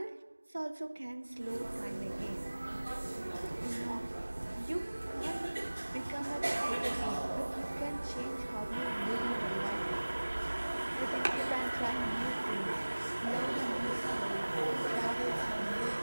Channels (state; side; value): inverted; both; correlation -1.00